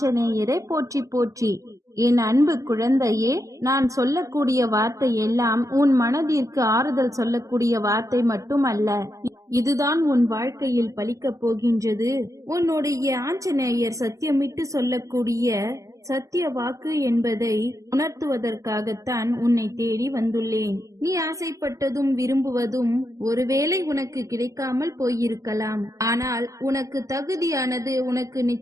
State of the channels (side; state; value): left; late; 0.16 ms